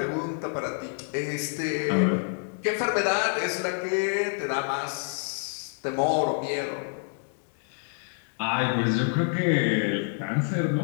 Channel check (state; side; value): silent; right; 56 dB below the other